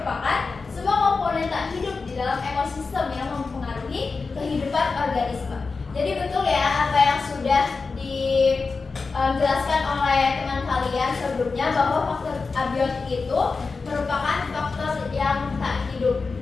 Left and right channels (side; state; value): right; quieter; 4.4 dB